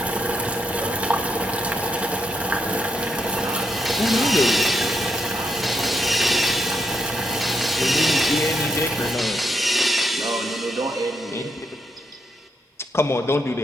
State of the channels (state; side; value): normal; both; correlation 0.79